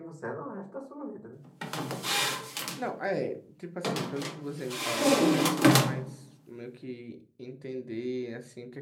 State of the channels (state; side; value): identical; both; correlation 1.00